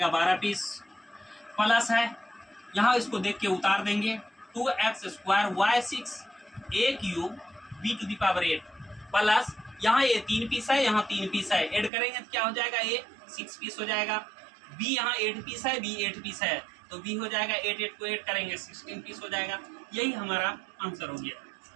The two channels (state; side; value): drops out; left; at 11.9 s